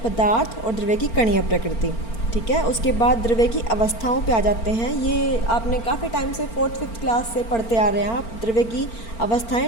पदार्थ और द्रव्य की कणीय प्रकृति, ठीक है। उसके बाद द्रव्य की अवस्थाओं पे आ जाते हैं। ये आपने काफ़ी टाइम से 4th-5th क्लास से पढ़ते आ रहे हैं आप। द्रव्य की अवस्थाएं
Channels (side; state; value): right; late; 4.4 ms